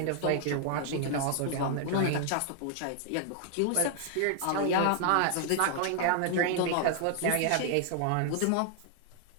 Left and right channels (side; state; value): both; different; correlation -0.01